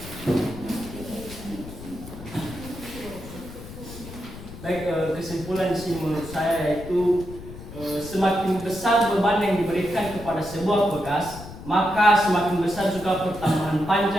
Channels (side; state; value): left; noise; rumble, 14 dB below the sound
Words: Baik, kesimpulan sih menurut saya yaitu semakin besar beban yang diberikan kepada sebuah pegas, maka semakin besar juga pertambahan